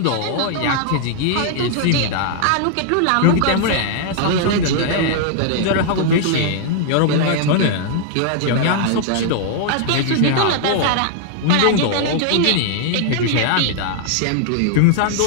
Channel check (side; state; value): both; different; correlation -0.01